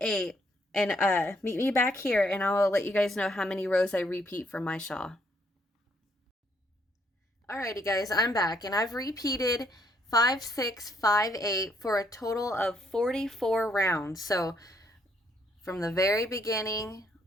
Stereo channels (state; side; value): normal; both; correlation 0.71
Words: and meet me back here, and I'll let you guys know how many rows I repeat for my shawl. Alrighty guys, I'm back, and I've repeated 5, 6, 5, 8 for a total of 44 rounds. So from the very beginning